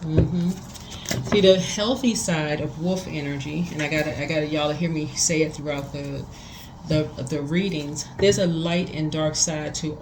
See, the healthy side of wolf energy, and I got y'all to hear me say it throughout the readings. There's a light and dark side to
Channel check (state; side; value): identical; both; correlation 1.00